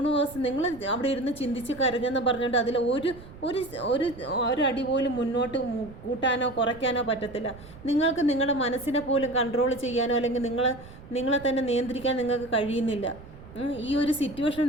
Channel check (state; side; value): noise; right; rumble, 18 dB below the sound